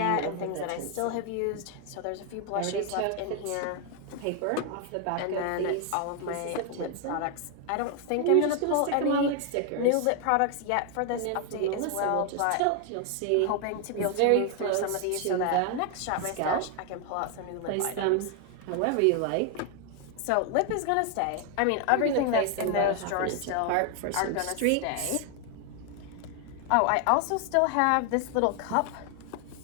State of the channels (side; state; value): both; different; correlation 0.00